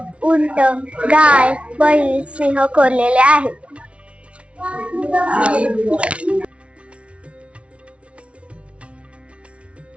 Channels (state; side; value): late; left; 0.061 ms